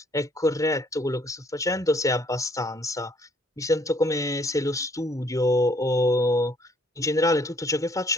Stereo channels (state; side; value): normal; both; correlation 0.64